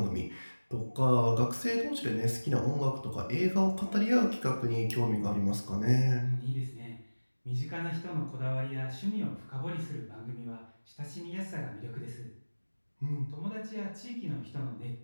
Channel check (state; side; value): inverted; both; correlation -1.00